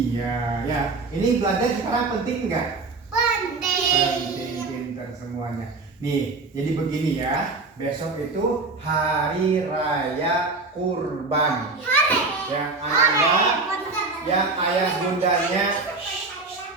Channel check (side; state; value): left; quieter; 3.8 dB